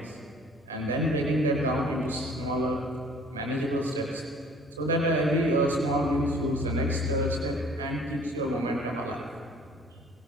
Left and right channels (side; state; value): both; normal; correlation 0.53